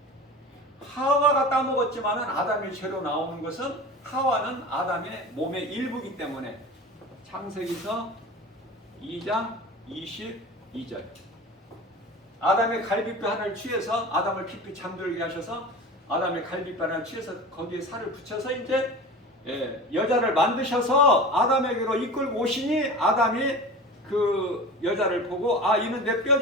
하와가 따먹었지만은 아담의 죄로 나오는 것은 하와는 아담의 몸의 일부이기 때문에 창세기서 2장 22절 아담의 갈비뼈 하나를 취해서 아담을 깊이 잠들게 하셔서 아담의 갈비뼈 하나를 취해서 거기에 살을 붙여서 이제 여자를 만드셔서 아담에게로 이끌고 오시니 아담이 그 여자를 보고 아 이는 내 뼈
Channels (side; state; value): both; normal; correlation 0.34